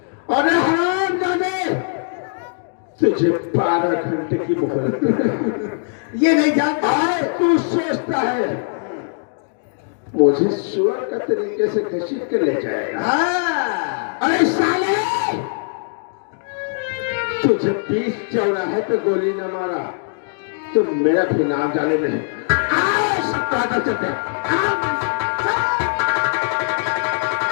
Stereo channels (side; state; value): right; silent; digital silence